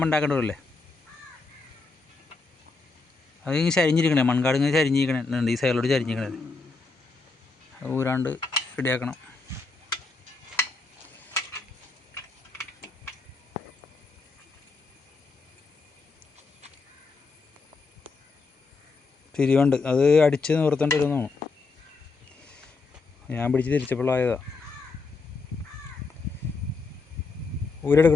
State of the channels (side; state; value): right; quieter; 4.1 dB